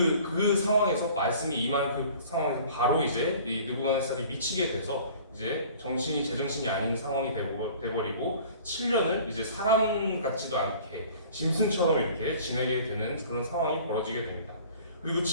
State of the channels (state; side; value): inverted; both; correlation -0.48